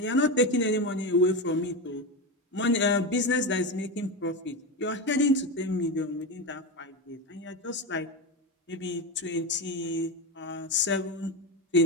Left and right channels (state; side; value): normal; both; correlation 0.17